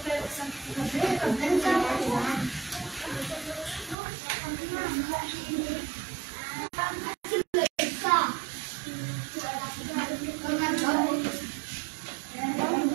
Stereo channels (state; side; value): drops out; left; at 4.0 s